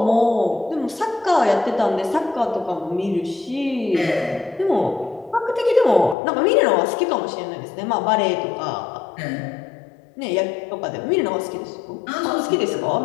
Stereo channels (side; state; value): right; drops out; at 6.2 s